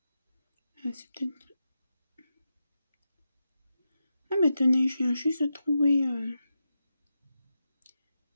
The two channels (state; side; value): inverted; both; correlation -0.89